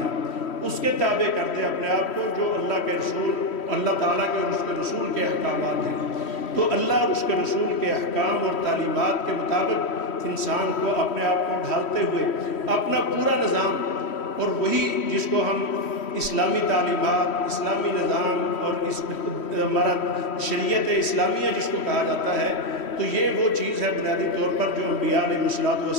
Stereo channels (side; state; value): right; late; 3.1 ms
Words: اس کے تابع کر دے اپنے آپ کو جو اللہ کے رسول، اللہ تعالیٰ کے اور اس کے رسول کے احکامات ہیں۔ تو اللہ اور اس کے رسول کے احکام اور تعلیمات کے مطابق انسان کو اپنے آپ کو ڈھالتے ہوئے اپنا پورا نظام، اور وہی جس کو ہم اسلامی تعلیمات، اسلامی نظام اور ہمارا شریعت اسلامیہ جس کو کہا جاتا ہے، تو یہ وہ چیز ہے بنیادی طور پر جو انبیاء علیہ